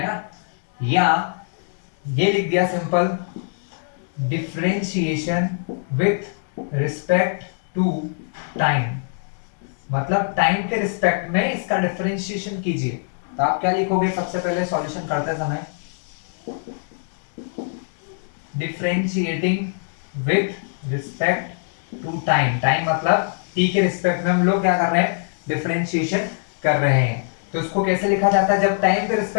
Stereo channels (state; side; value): silent; right; digital silence